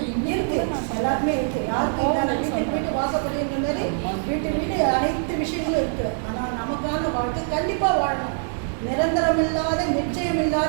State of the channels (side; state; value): left; silent; digital silence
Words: எல்லாருமே இருக்குது. யாருக்கு இல்லாத வீட்டுக்கு வீட்டு வாசப்படின்ற மாதிரி வீட்டு அனைத்து விஷயங்களும் இருக்குது. ஆனால் நமக்கான வாழ்க்கை கண்டிப்பாக வாழணும். நிரந்தரம் இல்லாத நிச்சயம்